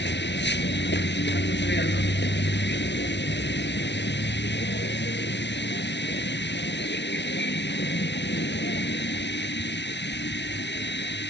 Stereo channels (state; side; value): late; right; 0.51 ms